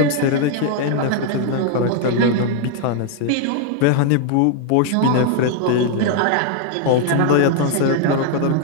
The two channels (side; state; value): both; different; correlation 0.00